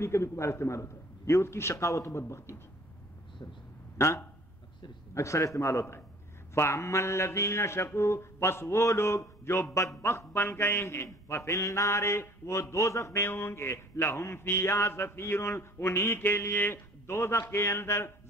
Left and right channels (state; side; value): normal; both; correlation 0.51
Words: کبھی کبھار استعمال ہوتا ہے. یہ اس کی شقاوت و بدبختی تھی، ہاں اکثر استعمال ہوتا ہے. فَأَمَّا الَّذِينَ شَقُوا، پس وہ لوگ جو بدبخت بن گئے ہیں، فَفِي النَّارِ، وہ دوزخ میں ہوں گے. لَهُمْ فِيهَا زَفِيرٌ، انہی کے لیے دوزخ کے اندر